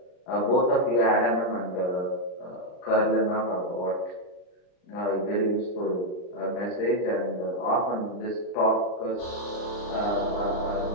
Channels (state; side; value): late; right; 39 ms